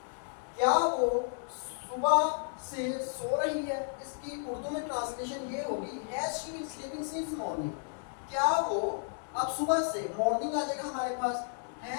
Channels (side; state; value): right; silent; digital silence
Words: क्या वो सुबह से सो रही है। इसकी उर्दू में ट्रांसलेशन ये होगी, has she been sleeping since morning, क्या वो, अब सुबह से मॉर्निंग आ जाएगा हमारे पास,